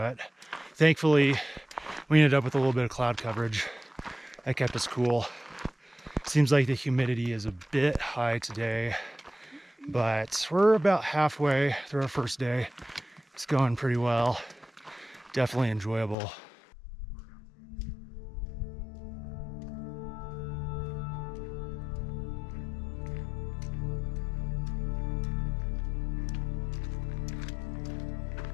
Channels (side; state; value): right; drops out; at 16.2 s